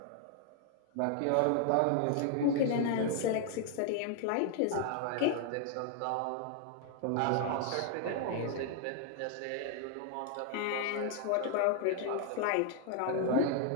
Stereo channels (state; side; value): different; both; correlation 0.00